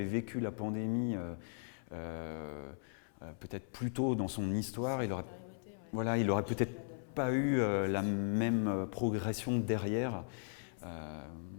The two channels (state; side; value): silent; right; 53 dB below the other